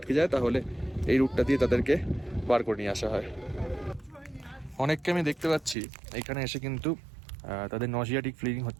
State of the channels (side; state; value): left; drops out; at 5.8 s